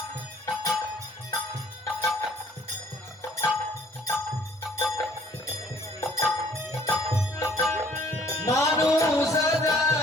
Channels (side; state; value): both; normal; correlation 0.57